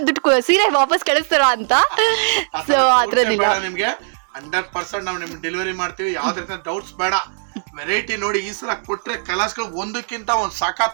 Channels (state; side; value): silent; left; digital silence